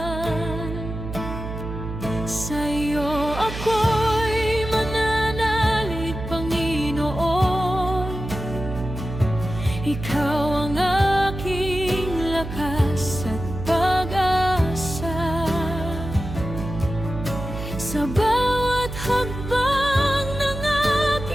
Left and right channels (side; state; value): right; noise; hum, 8 dB below the sound